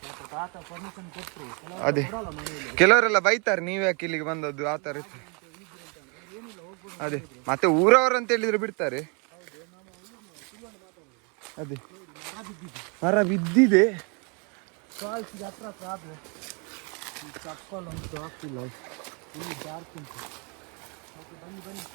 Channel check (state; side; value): quieter; left; 34.3 dB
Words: ತಾತ ಪರ್ಮಿಷನ್ ಕೊಟ್ಟರು. ಅದೇ ಕೆಲವರೆಲ್ಲ ಬೈತಾರೆ, ನೀವ್ ಯಾಕೆ ಇಲ್ಲಿಗೆ ಬಂದದ್ದು ಆ ಥರ ಇತ್ತು. ಅದೇ ಮತ್ತೆ ಊರವರು ಅಂತ ಹೇಳಿದ್ರೆ ಬಿಡ್ತಾರೆ. ಅದೇ ಮರ ಬಿದ್ದಿದೆ. ಫಾಲ್ಸ್ಗೆ ಹತ್ರ ಆದ್ರೆ ಈ ಚಪ್ಪಲ್ ಅಂತೂ ಆಗ್ತಿಲ್ಲ, ಇಲ್ಲಿ ಡಾರ್ಕ್ ಉಂಟು. ಓಕೆ ಬನ್ನಿ ಬನ್ನಿ.